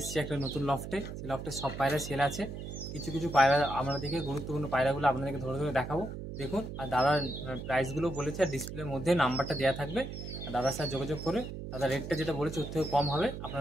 একটা নতুন লফটে, সেই লফটে সব পায়রা সেল আছে। কিছু কিছু পায়রা আপনাদেরকে, গুরুত্বপূর্ণ পায়রাগুলো আপনাদেরকে ধরে ধরে দেখাবো। দেখুন, আর দাদার প্রাইসগুলো বলেছে, আর ডিসপ্লের মধ্যে নাম্বারটা দেওয়া থাকবে। আর দাদার সাথে যোগাযোগ করে দাদার রেটটা যেটা বলেছে ওর থেকে কম হবে,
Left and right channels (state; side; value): noise; right; hum, 8 dB below the sound